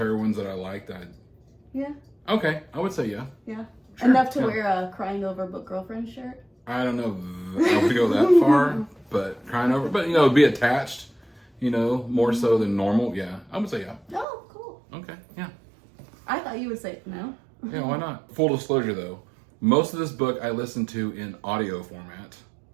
that I like that... yeah, Okay, I would say yeah. yeah, Sure, enough to yeah. wear a crying over book girlfriend shirt. I don't know if I would go that far, but crying over... But, be attached, more so than normal. Yeah, I would say yeah. Oh, cool. Okay, yeah. I thought you would say no. Yeah, why not? Full disclosure though, most of this book I listened to in audio format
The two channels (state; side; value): drops out; left; at 14.2 s